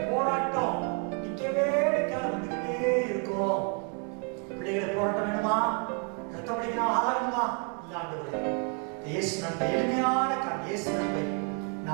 போராட்டம் நிக்கவே நிக்காத வந்துகிட்டே இருக்கும். பிள்ளைகளை போராட்டம் வேணுமா, ரத்தப்படிக்கு நான் ஆளாகணுமா? இல்ல ஆண்டவரே, இயேசு நன்மை எளிமையான இயேசு நன்மை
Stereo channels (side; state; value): left; quieter; 36.3 dB